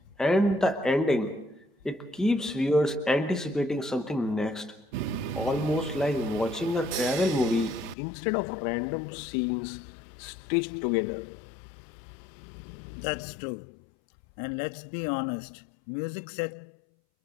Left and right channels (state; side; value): drops out; right; at 8.0 s